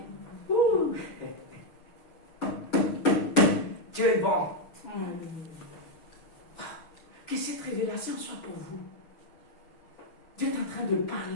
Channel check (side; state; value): right; late; 6.5 ms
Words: Ouh. Dieu est bon. Que cette révélation soit pour vous. Dieu est en train de